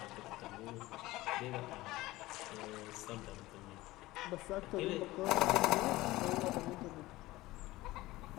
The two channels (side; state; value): right; quieter; 18.4 dB